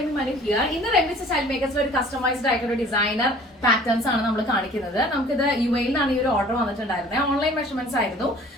Manu here. In the Remy Style Makers ഒരു customised ആയിട്ടുള്ള designer patterns ആണ് നമ്മൾ കാണിക്കുന്നത്. നമുക്കിത് UAE ലാണ് ഈ ഒരു ഓർഡർ വന്നിട്ടുണ്ടായിരുന്നത്. ഓൺലൈൻ മെഷർമെന്റ്സ് ആയിരുന്നു.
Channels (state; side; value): normal; both; correlation 0.50